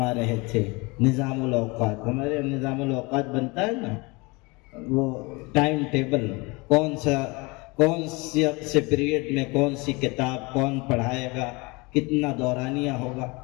رہے تھے نظام الاوقات۔ ہمارے نظام الاوقات بنتا ہے نا، وہ ٹائم ٹیبل، کون سے پیریڈ میں کون سی کتاب کون پڑھائے گا، کتنا دورانیہ ہوگا،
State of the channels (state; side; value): quieter; right; 26.2 dB